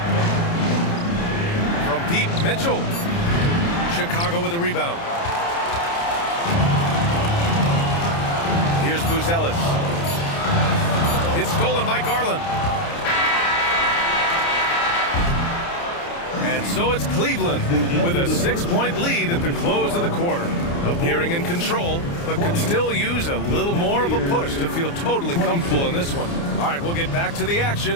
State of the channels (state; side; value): late; right; 29 ms